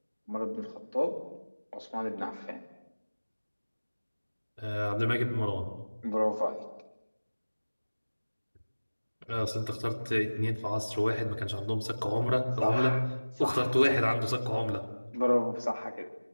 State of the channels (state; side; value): inverted; both; correlation -1.00